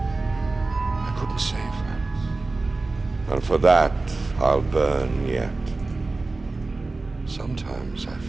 couldn't save her. And for that, I'll burn yet. Sometimes I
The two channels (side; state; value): left; quieter; 3.5 dB